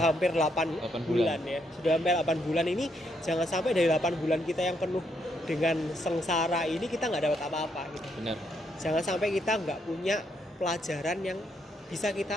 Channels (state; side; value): normal; both; correlation 0.76